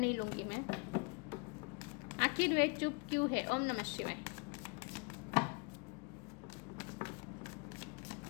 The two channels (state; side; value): quieter; right; 32.4 dB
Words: लूंगी मैं। आखिर वे चुप क्यों है। ओम नमः शिवाय।